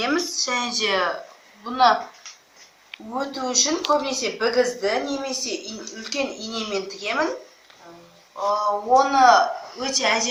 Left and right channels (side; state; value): both; identical; correlation 1.00